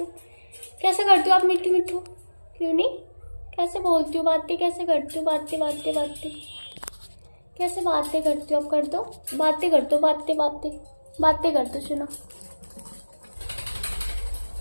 कैसे करती हो आप? मिट्टू क्यों नहीं? कैसे बोलती हो? बातें कैसे करती हो? बातें कैसे बातें करते हो? अब कर दो, बातें कर दो, बातें कर दो। सुनो,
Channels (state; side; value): inverted; both; correlation -1.00